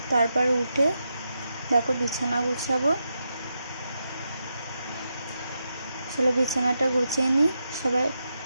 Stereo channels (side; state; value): both; inverted; correlation -0.85